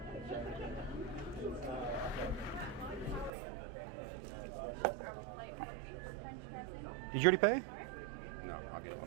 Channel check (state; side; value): drops out; left; at 3.3 s